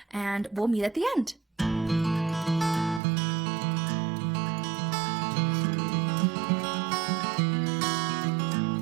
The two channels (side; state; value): left; drops out; at 3.0 s